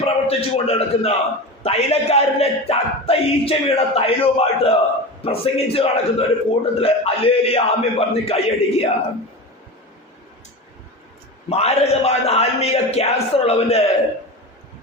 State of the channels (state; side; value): normal; both; correlation 0.26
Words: പ്രവർത്തിച്ചു കൊണ്ട് നടക്കുന്ന തൈലക്കാരന്റെ ചത്ത ഈച്ച വീണ തൈലവുമായിട്ട് പ്രസംഗിച്ച് നടക്കുന്ന ഒരു കൂട്ടത്തില് അല്ലേലിയ ആമ്യം പറഞ്ഞ് കൈയടിക്കുക. മാരകമായ ആത്മീക ക്യാൻസർ ഉള്ളവന്റെ